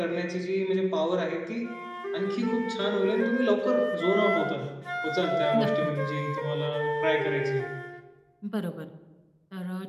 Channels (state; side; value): identical; both; correlation 1.00